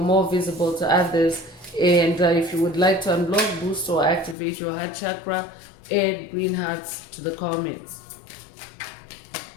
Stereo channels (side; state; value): right; drops out; at 4.4 s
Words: visible to others. And if you would like to unblock, boost, or activate your heart chakra, add green hearts to the comments.